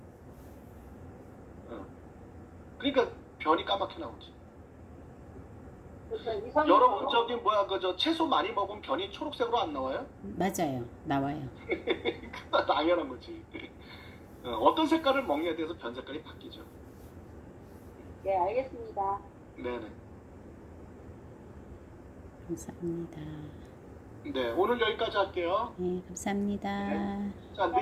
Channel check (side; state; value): both; identical; correlation 1.00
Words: 그러니까 변이 까맣게 나오지. 여러분 저기 저 채소 많이 먹으면 변이 초록색으로 안 나와요? 맞아요. 나와요. 당연한 거지. 어떤 색깔을 먹냐에 대해서 변 색깔이 바뀌죠. 네, 알겠습니다. 네네. 감사합니다. 네, 오늘 여기까지 할게요. 네, 감사합니다. 네. 자,